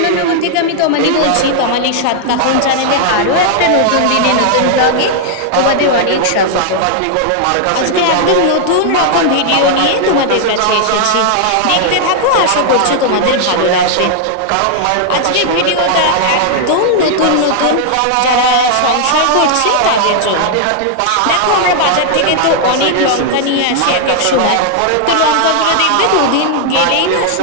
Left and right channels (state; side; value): different; both; correlation -0.01